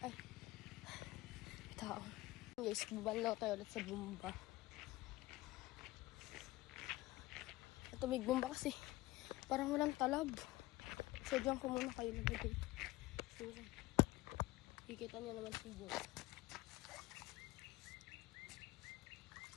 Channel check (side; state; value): right; quieter; 18.8 dB